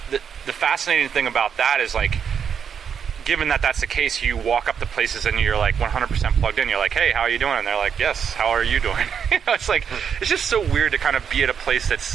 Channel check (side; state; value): left; quieter; 7.4 dB